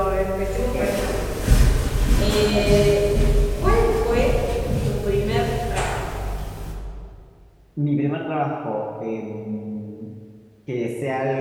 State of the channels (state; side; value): identical; both; correlation 1.00